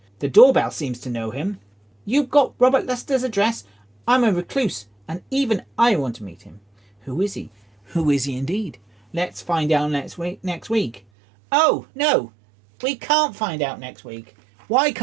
The doorbell seems to know him. You've got Robert Luster's address? I'm a recluse, and even I want to meet him. Who is he? Who is he indeed? Let's find out next week. Oh, no. We can't find out next week. Why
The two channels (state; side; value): drops out; left; at 11.0 s